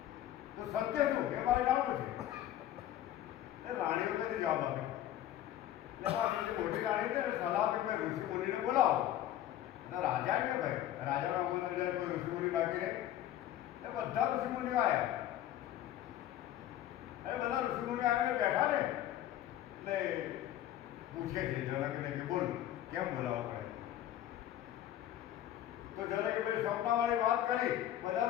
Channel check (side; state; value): right; quieter; 12.4 dB